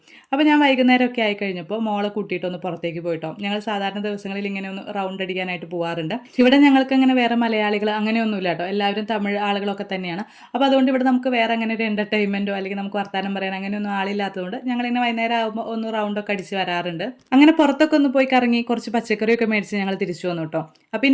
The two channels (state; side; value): identical; both; correlation 1.00